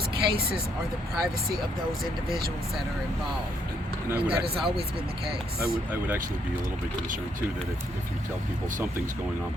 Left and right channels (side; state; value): both; normal; correlation 0.72